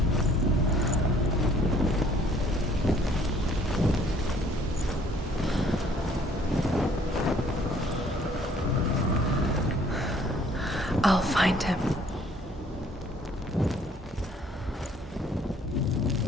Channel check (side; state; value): both; normal; correlation 0.59